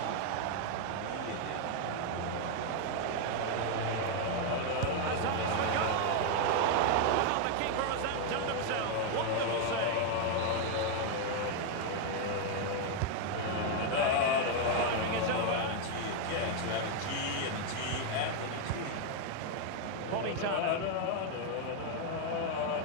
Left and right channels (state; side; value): different; both; correlation 0.00